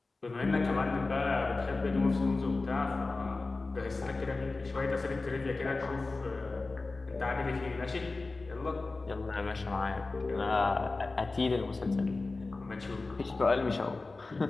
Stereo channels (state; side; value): quieter; right; 3.5 dB